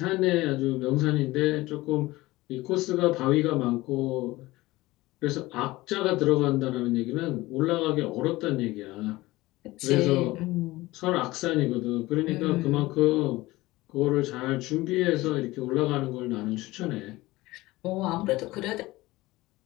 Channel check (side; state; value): right; quieter; 19.3 dB